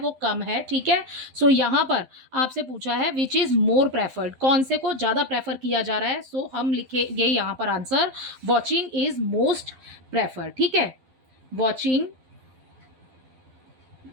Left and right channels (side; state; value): left; late; 12 ms